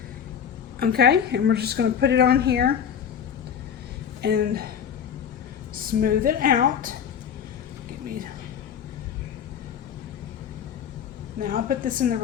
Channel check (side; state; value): right; quieter; 8.1 dB